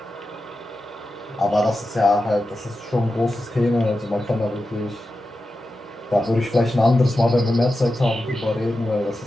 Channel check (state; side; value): normal; both; correlation 0.91